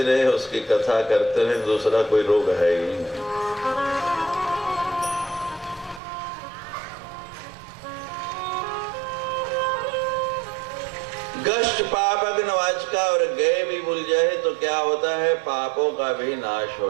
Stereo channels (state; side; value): drops out; left; at 6.0 s